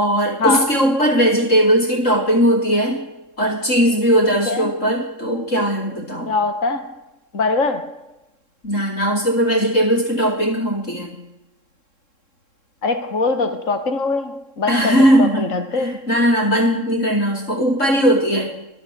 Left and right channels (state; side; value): late; right; 3.7 ms